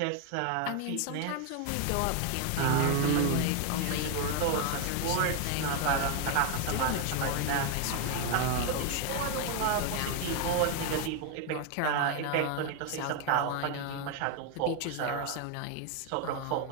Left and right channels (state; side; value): different; both; correlation 0.01